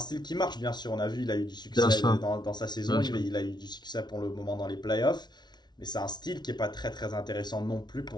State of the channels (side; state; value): right; late; 0.20 ms